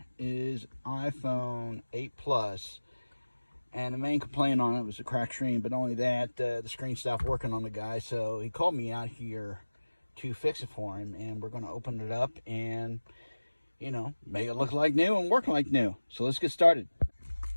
is iPhone 8 Plus, and the main complaint on it was a cracked screen. But not only that, the screen stopped working on the guy, so he called me out here to fix it for him, and we're going to open it up and, you know, make it look like new and work like new. So let's get started.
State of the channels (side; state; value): both; inverted; correlation -1.00